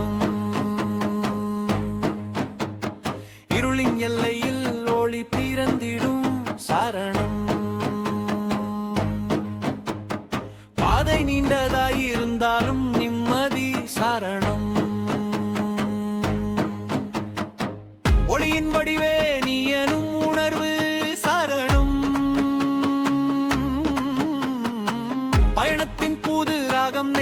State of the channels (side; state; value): both; identical; correlation 1.00